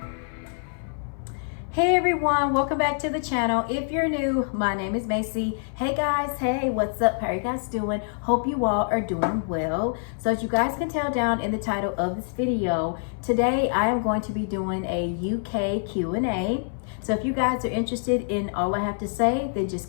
Hey everyone, welcome back to the channel. If you're new, my name is Macy. Hey guys, hey, what's up? How are you guys doing? Hope you all are doing well. So as you guys can tell down in the title of this video, today I am going to be doing a UK Q&A. So if you guys are interested in all I have to say, then just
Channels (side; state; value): right; silent; 58 dB below the other